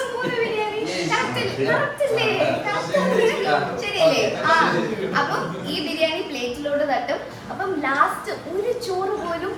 ശരിയല്ലേ? അപ്പം ഈ ബിരിയാണി പ്ലേറ്റിലോട്ട് തട്ടും. അപ്പം ലാസ്റ്റ് ഒരു ചോറ് പോലും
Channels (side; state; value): both; identical; correlation 1.00